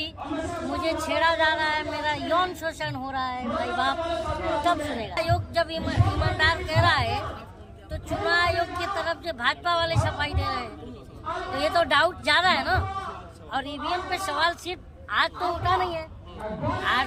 मुझे छेड़ा जा रहा है, मेरा यौन शोषण हो रहा है, भाई बाप तब सुनेगा। आयोग जब ईमानदार कह रहा है तो चुनाव आयोग की तरफ से भाजपा वाले सफाई दे रहे हैं, तो ये तो डाउट ज्यादा है ना। और ईवीएम पे सवाल सिर्फ आज तो उठा नहीं है,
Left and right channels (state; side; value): identical; both; correlation 1.00